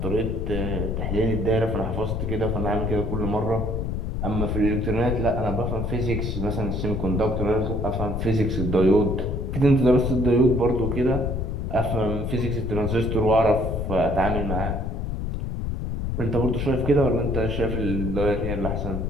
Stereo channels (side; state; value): left; noise; rumble, 2 dB below the sound